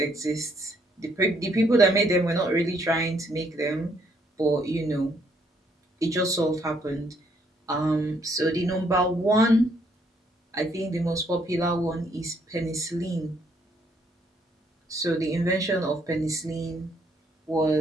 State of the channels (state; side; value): normal; both; correlation 0.69